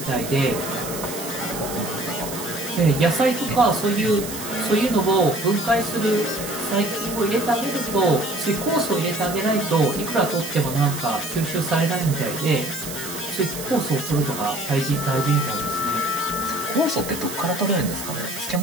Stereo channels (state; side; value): noise; right; hiss, 9 dB below the sound